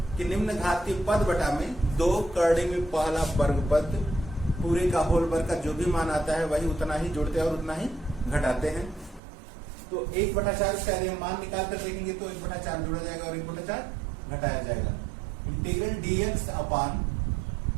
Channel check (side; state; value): left; drops out; at 9.2 s